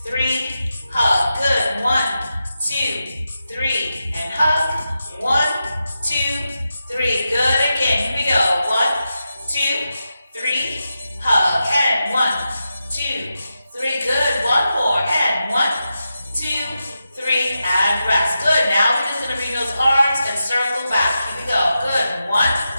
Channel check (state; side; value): inverted; both; correlation -0.89